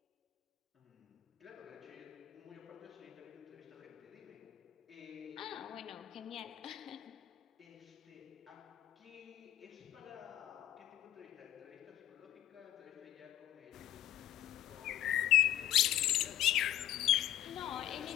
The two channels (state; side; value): quieter; right; 12.8 dB